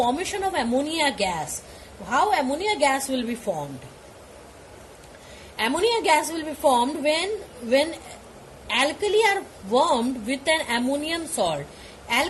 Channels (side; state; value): both; identical; correlation 1.00